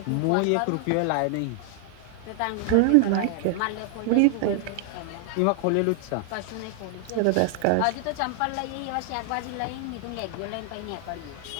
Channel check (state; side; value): different; both; correlation 0.00